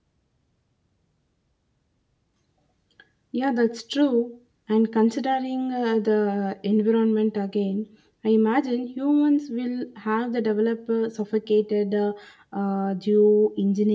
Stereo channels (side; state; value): both; identical; correlation 1.00